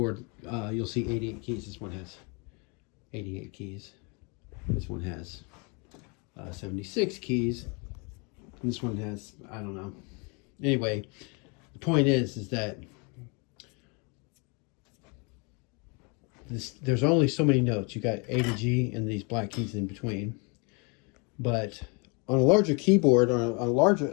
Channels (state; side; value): quieter; right; 32.3 dB